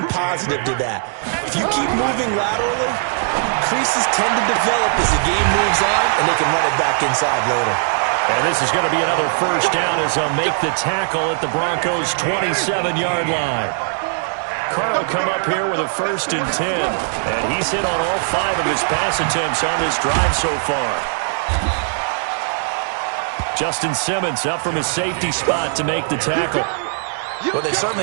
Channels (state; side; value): silent; left; digital silence